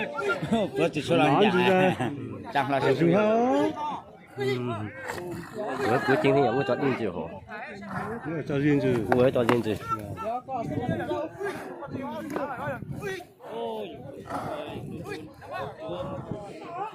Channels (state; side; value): identical; both; correlation 1.00